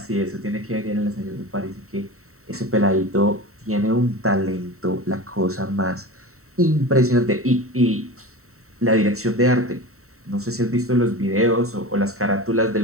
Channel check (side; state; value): left; late; 0.64 ms